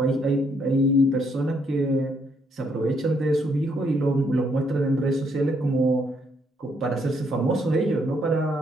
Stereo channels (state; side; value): normal; both; correlation 0.72